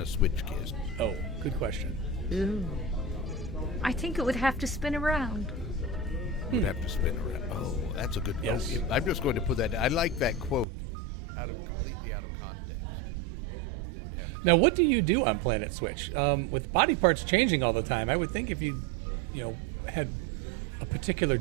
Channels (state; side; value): drops out; left; at 10.7 s